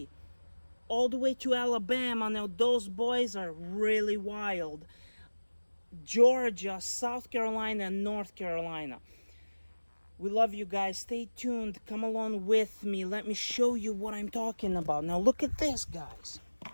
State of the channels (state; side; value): inverted; both; correlation -1.00